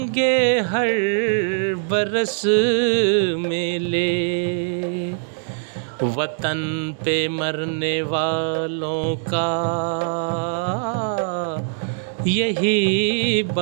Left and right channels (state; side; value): silent; left; digital silence